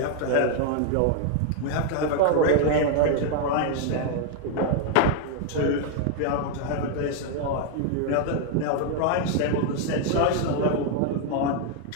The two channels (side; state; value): both; different; correlation 0.00